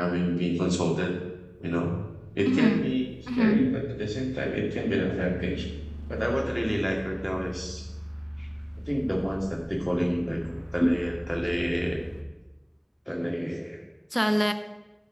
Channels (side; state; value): both; identical; correlation 1.00